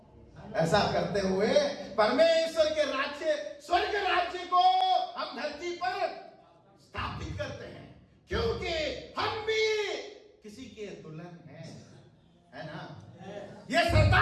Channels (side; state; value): both; identical; correlation 1.00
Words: ऐसा करते हुए परमेश्वर के राज्य, स्वर्ग राज्य को हम धरती पर स्थापित करते हैं, क्योंकि हम भी किसी के दुल्हन हैं, है ना? ये